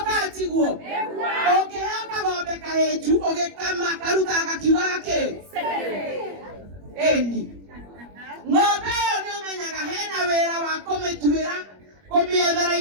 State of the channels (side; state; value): left; late; 21 ms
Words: katiguo ũngĩheo kagombe kahĩnju ũgĩkama karutaga gakiugaga kĩ ĩni ng'ombe ĩyo nĩũmenyaga hena wĩra wa kũmĩtuĩra kũmĩethera